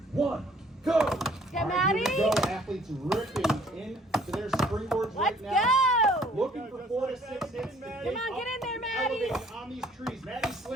1, go! Get Maddie. Here we go. Athletes ripping into their springboards right now. Let's go! Looking for 4 to 6 hits. Come on, get in there, Maddie. Elevating on these trees. Maddie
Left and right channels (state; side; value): normal; both; correlation 0.58